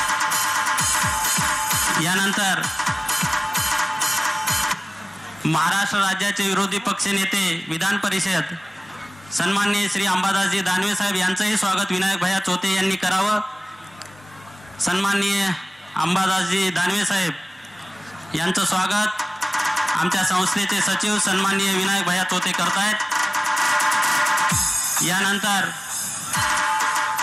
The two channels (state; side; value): normal; both; correlation 0.97